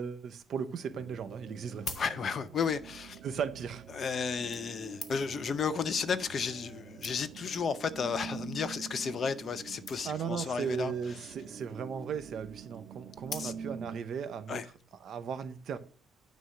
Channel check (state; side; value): normal; both; correlation 0.70